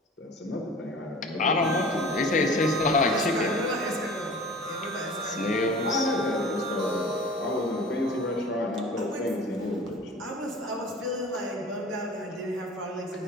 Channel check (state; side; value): normal; both; correlation 0.41